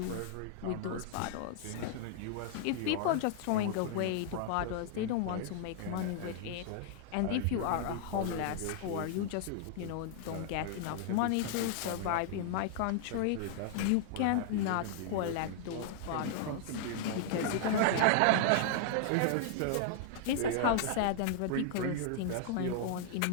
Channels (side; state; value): both; different; correlation -0.01